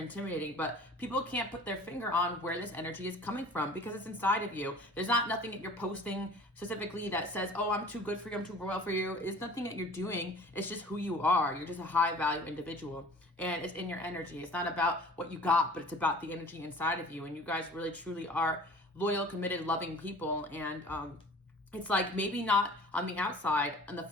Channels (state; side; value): normal; both; correlation 0.46